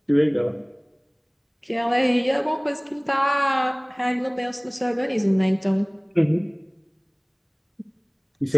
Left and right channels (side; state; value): both; identical; correlation 1.00